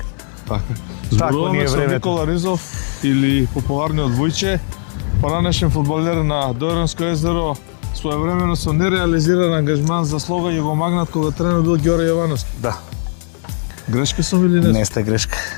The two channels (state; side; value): silent; right; 57 dB below the other